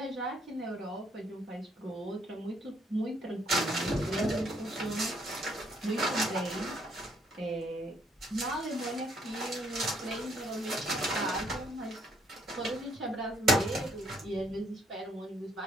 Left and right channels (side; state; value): both; normal; correlation 0.68